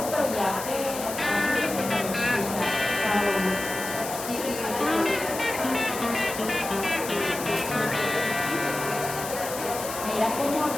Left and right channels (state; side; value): noise; left; hiss, 8 dB below the sound